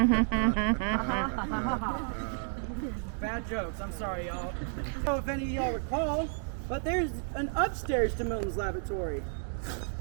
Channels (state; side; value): silent; left; 57 dB below the other